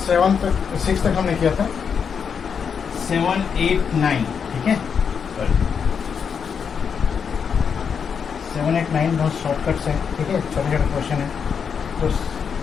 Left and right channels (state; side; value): quieter; right; 6.7 dB